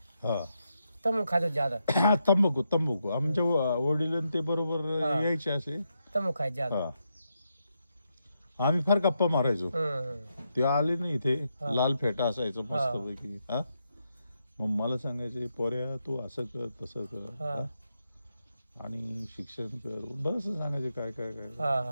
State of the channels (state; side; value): inverted; both; correlation -0.83